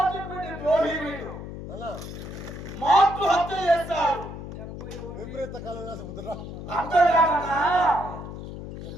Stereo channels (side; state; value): left; noise; hum, 10 dB below the sound